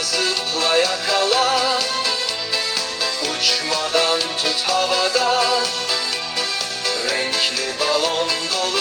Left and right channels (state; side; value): identical; both; correlation 1.00